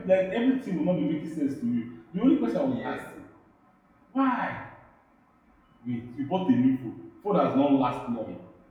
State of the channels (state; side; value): identical; both; correlation 1.00